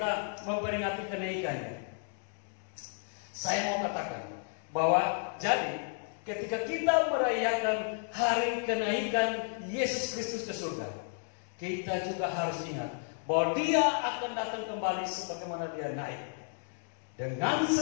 memperingati kenaikannya. Saya mau katakan bahwa jadi ketika kita merayakan hari kenaikan Yesus Kristus ke surga, kita juga harus ingat bahwa Dia akan datang kembali sebagaimana Dia naik. Dengan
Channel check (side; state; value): right; silent; 56 dB below the other